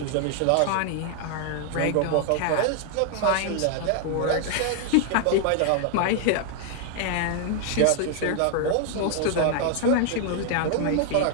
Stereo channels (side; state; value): both; different; correlation 0.00